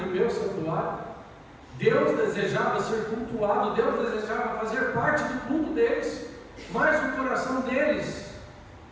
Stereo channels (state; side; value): identical; both; correlation 1.00